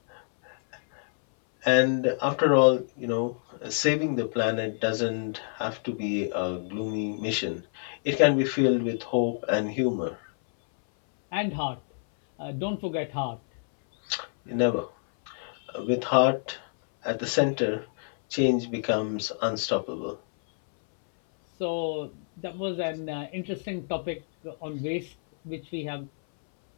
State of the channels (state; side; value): silent; right; 58 dB below the other